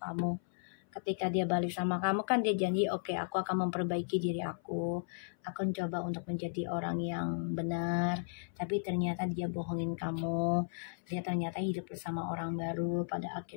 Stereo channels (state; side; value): silent; right; 54 dB below the other